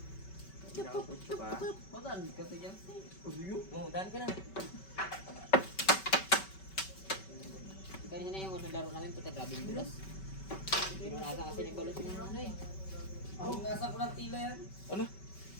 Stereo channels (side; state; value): right; late; 5.2 ms